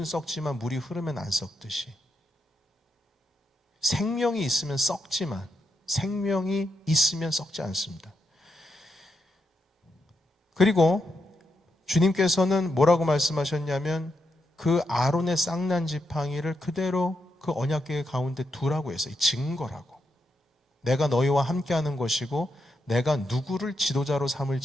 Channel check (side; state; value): both; normal; correlation 0.83